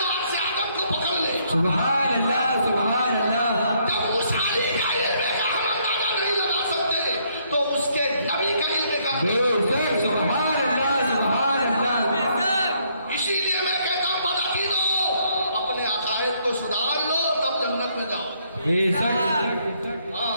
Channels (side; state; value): both; inverted; correlation -0.70